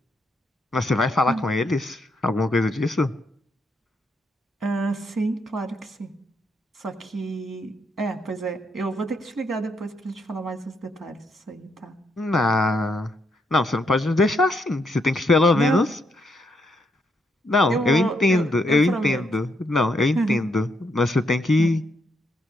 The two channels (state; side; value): normal; both; correlation 0.77